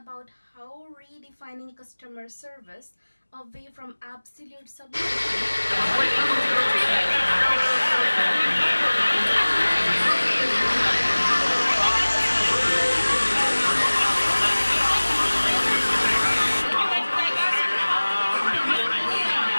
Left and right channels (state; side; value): inverted; both; correlation -1.00